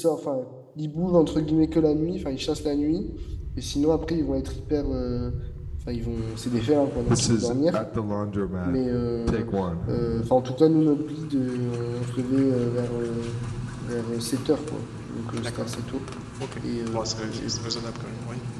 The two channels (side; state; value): both; identical; correlation 1.00